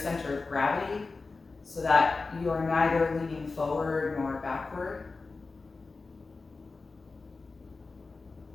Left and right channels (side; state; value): right; quieter; 3.9 dB